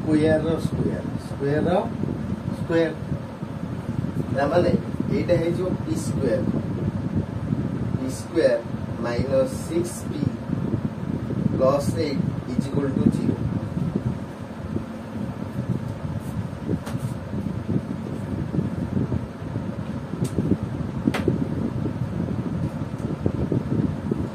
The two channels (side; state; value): both; identical; correlation 1.00